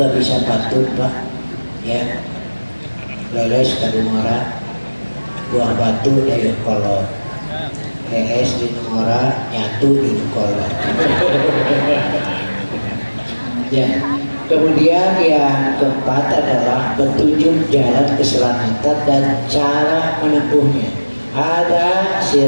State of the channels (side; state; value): both; inverted; correlation -1.00